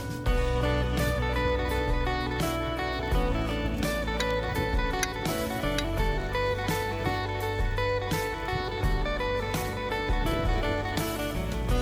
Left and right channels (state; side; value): identical; both; correlation 1.00